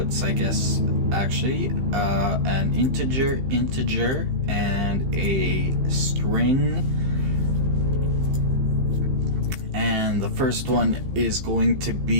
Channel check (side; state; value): left; late; 15 ms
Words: I guess, actually, an integer, and a string. And the first one is going to